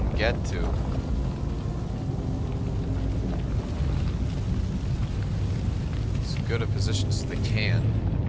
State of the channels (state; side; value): identical; both; correlation 1.00